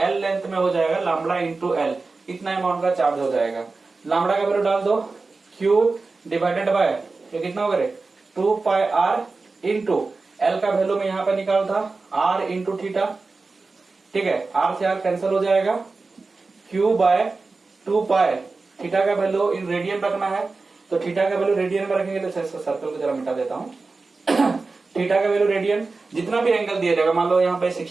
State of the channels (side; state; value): left; quieter; 3.9 dB